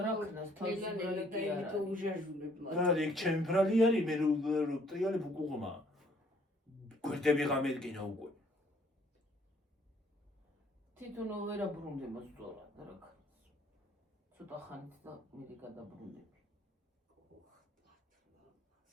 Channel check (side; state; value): both; normal; correlation 0.62